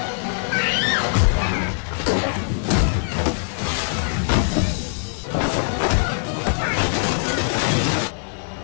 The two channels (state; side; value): silent; right; 64 dB below the other